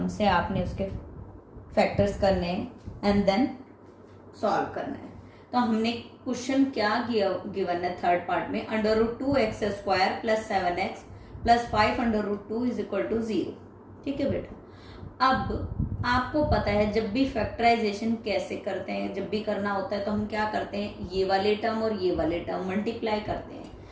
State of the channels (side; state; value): both; identical; correlation 1.00